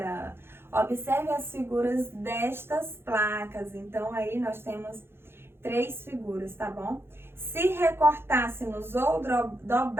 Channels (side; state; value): left; late; 0.11 ms